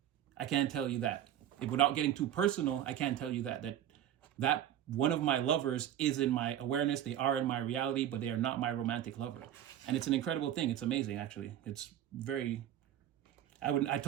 I can't tell you that. Without getting too personal, I can't tell you that one of my lovers is in my awareness. They are in my reality, but they are not my romantic lover. And it's an incredible thing. It's amazing, actually. It's very, I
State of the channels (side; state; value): left; quieter; 11.2 dB